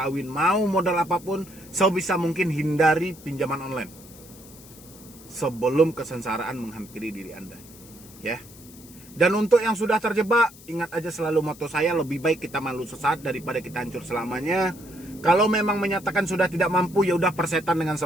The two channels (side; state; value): left; noise; hiss, 21 dB below the sound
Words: mau modal apapun, sebisa mungkin hindari pinjaman online sebelum kesengsaraan menghampiri diri Anda. Ya. Dan untuk yang sudah terjebak, ingat aja selalu moto saya, lebih baik kita malu sesaat daripada kita hancur selamanya. Kalau memang menyatakan sudah tidak mampu, ya udah persetan dengan